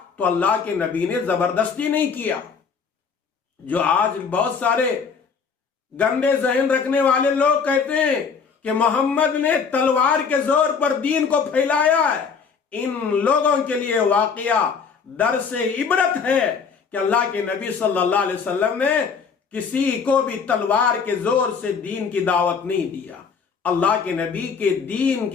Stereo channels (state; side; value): quieter; right; 5.8 dB